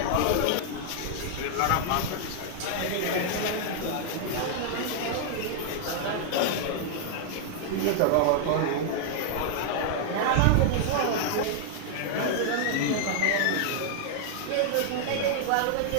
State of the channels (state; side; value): different; both; correlation -0.01